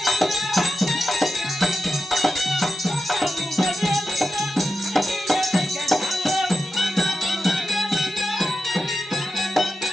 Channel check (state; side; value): normal; both; correlation 0.89